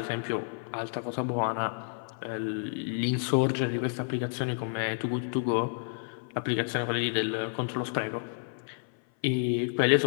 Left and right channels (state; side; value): silent; right; 55 dB below the other